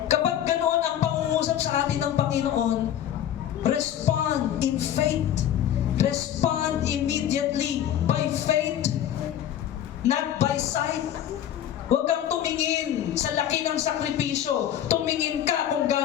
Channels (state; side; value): quieter; right; 10.8 dB